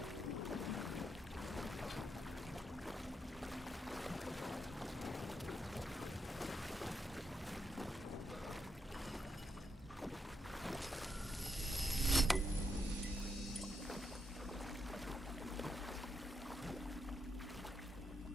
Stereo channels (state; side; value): normal; both; correlation 0.82